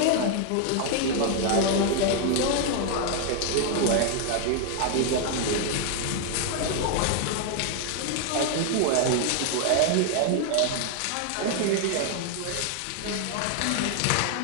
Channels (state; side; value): different; both; correlation 0.00